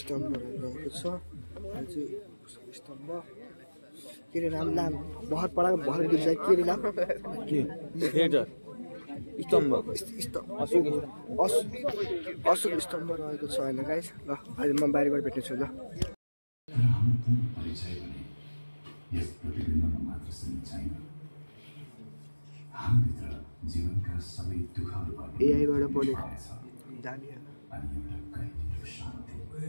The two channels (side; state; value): both; inverted; correlation -1.00